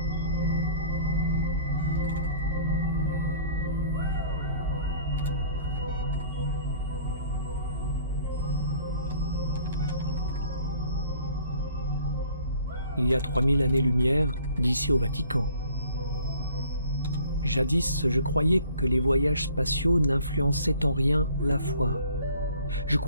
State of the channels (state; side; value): inverted; both; correlation -0.53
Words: Il y a 3000 années-lumière d'ici au Vatican. Jadis, je croyais que les voyages spatiaux n'influençaient en rien la foi. Je